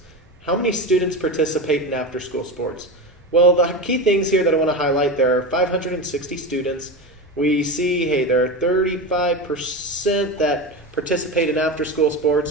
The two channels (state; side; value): normal; both; correlation 0.21